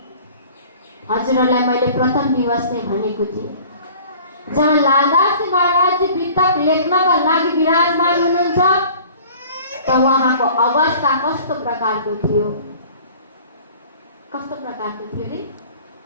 हजुरहरूलाई मैले प्रथम दिवस नै भनेको थिएँ, जहाँ लालदास महाराज वितक लेख्नका लागि विराजमान हुनुहुन्छ त उहाँको अवस्था कस्तो प्रकारको थियो, कस्तो प्रकारको थियो रे?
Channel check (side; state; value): both; inverted; correlation -0.47